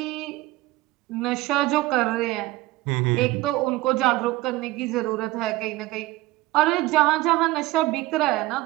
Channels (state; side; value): quieter; left; 18.8 dB